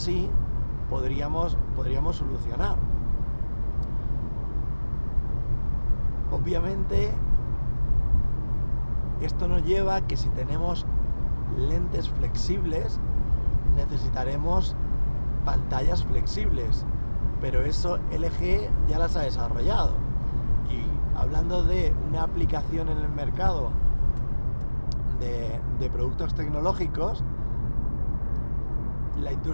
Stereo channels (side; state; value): both; inverted; correlation -1.00